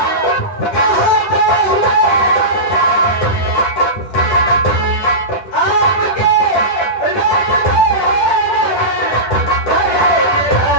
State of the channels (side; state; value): right; late; 10 ms